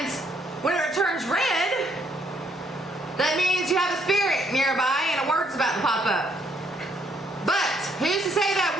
whenever it turns red, that means you have a spirit nearby and a word's about to pop up. But who's to say that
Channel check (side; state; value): both; normal; correlation 0.70